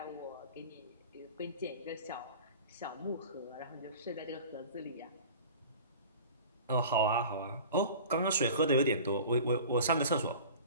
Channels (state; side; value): inverted; both; correlation -0.40